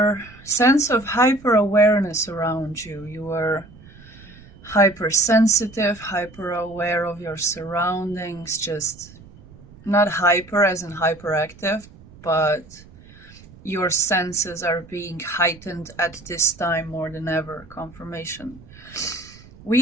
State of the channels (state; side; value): noise; right; rumble, 22 dB below the sound